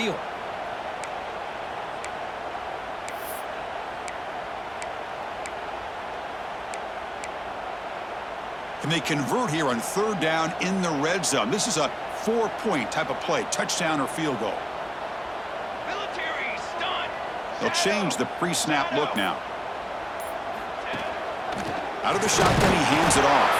And they convert here on 3rd down in the red zone. This is a 4-point type of play, touchdown or field goal. They'll change the pre-snap look now. Out of the shotgun, he hands it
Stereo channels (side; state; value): both; identical; correlation 1.00